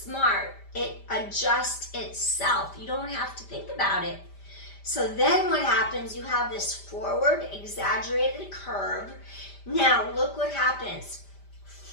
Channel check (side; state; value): right; late; 5.0 ms